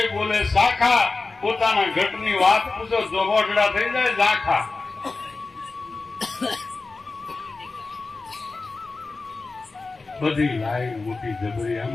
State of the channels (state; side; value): quieter; right; 3.8 dB